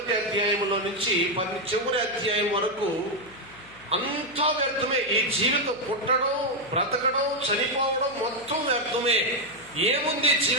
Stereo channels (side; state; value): left; noise; hum, 24 dB below the sound